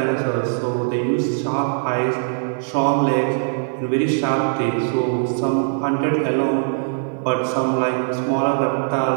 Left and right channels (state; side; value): silent; left; 55 dB below the other